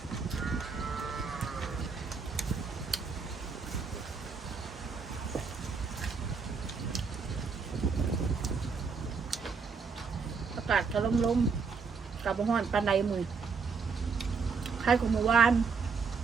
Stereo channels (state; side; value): quieter; left; 5.2 dB